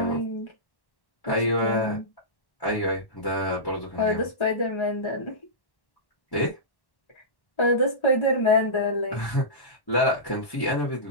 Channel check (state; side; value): late; right; 1.1 ms